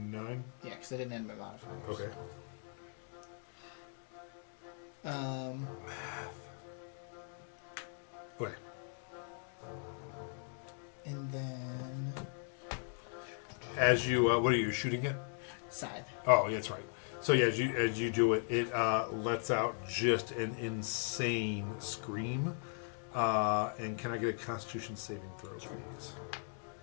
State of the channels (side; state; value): right; silent; 52 dB below the other